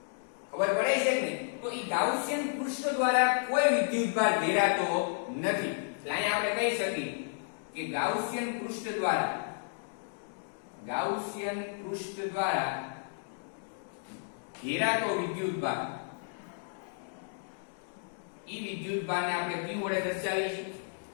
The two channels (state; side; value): silent; right; digital silence